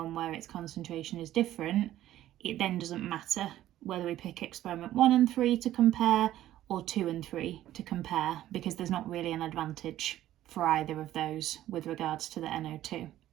where its concentration is different. It then doesn't matter whether we pick experiment 1 and 3 to compare or 2 and 3 to compare, because there's not really an advantage for either of those with regards to the NO2.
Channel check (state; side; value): quieter; left; 13.5 dB